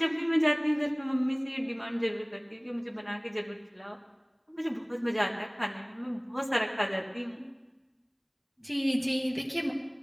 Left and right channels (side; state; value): both; identical; correlation 1.00